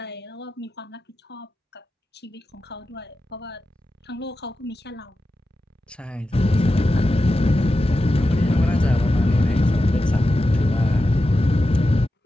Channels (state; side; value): normal; both; correlation 0.91